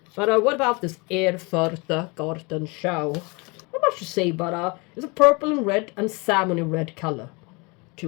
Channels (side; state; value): right; quieter; 28.4 dB